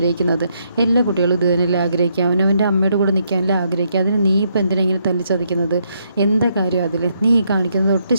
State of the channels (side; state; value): both; inverted; correlation -0.75